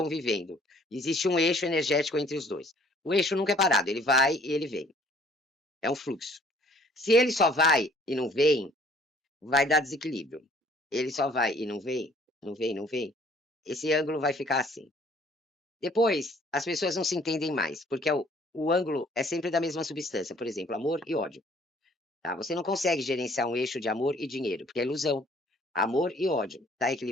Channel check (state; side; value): normal; both; correlation 0.58